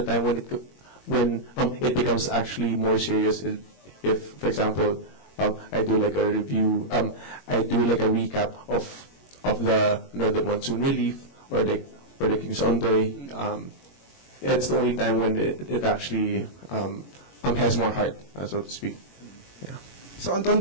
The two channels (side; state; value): right; late; 21 ms